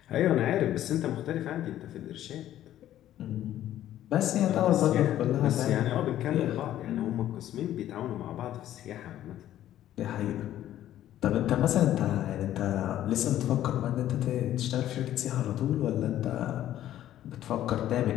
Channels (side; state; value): right; quieter; 12.5 dB